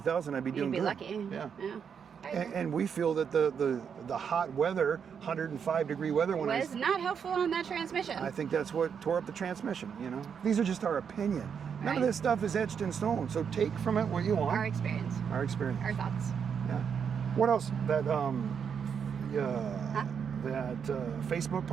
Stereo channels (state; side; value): quieter; left; 7.1 dB